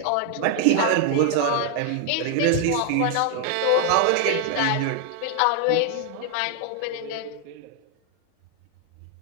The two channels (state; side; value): different; both; correlation 0.00